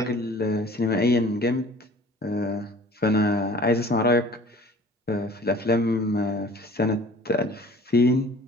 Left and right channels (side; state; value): both; normal; correlation 0.47